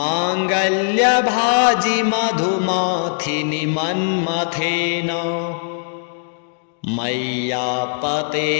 मधुमाथिनि मन्मथेन मय्यापते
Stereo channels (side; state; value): right; silent; digital silence